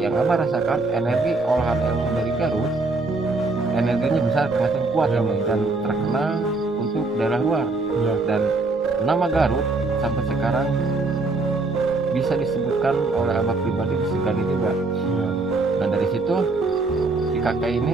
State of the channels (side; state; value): left; quieter; 3.5 dB